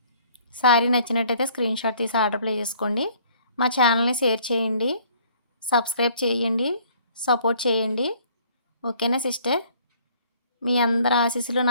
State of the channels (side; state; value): both; inverted; correlation -0.58